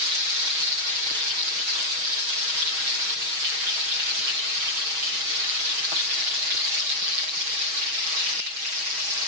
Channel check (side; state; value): left; late; 6.3 ms